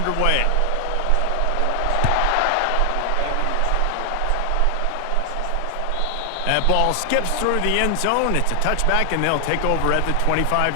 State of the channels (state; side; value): different; both; correlation 0.00